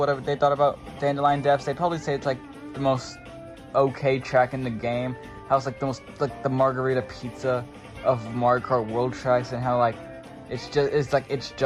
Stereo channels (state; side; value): identical; both; correlation 1.00